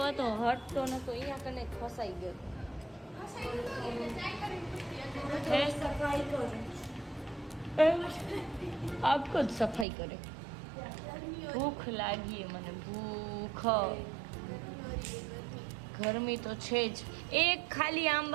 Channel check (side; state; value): left; drops out; at 9.9 s